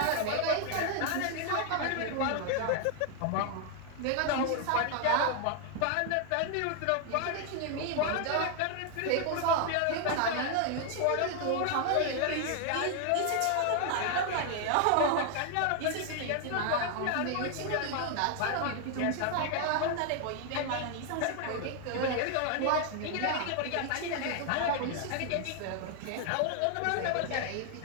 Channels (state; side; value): different; both; correlation 0.00